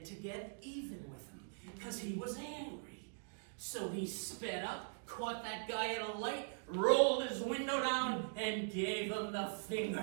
to get even with him because he was angry. So he sped up, caught that guy at a light, rolled his window down, and gave him the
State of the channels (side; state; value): left; silent; digital silence